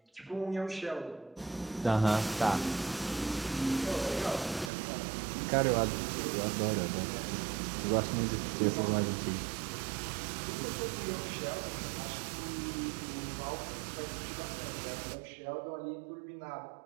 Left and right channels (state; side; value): drops out; left; at 4.7 s